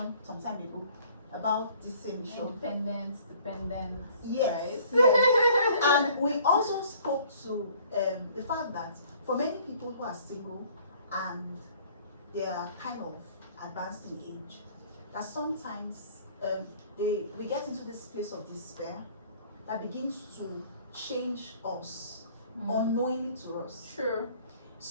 some time ago about this same issue. Independence, dependence. Yes. Right? Yes. And we also spoke to the fact that for many people who are single and they are kind of advanced in age, that sometimes we get into this place of despair that begins to change us unknowingly to us. Sure.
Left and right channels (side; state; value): both; inverted; correlation -0.55